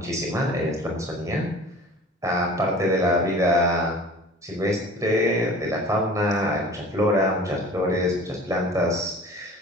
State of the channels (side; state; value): both; normal; correlation 0.43